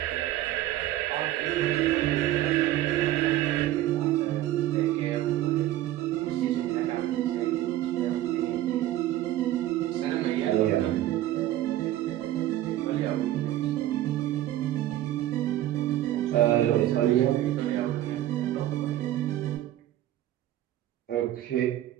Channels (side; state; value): left; quieter; 13.9 dB